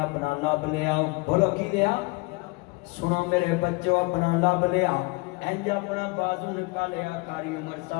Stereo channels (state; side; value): quieter; right; 26.5 dB